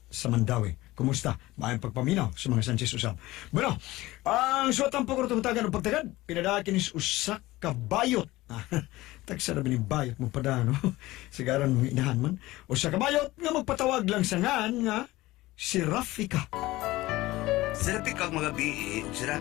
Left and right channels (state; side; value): quieter; right; 18.4 dB